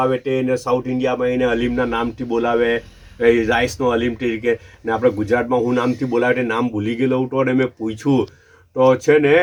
તે એને સાઉથ ઇન્ડિયામાં એને હલીમના નામથી બોલાવે રાઈસનો હલીમ તરીકે ને આપણે ગુજરાતમાં હું નામથી બોલાવે તે નામ ભૂલી ગયેલો હતો અને મેં પૂછ્યું તો છે ને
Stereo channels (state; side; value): identical; both; correlation 1.00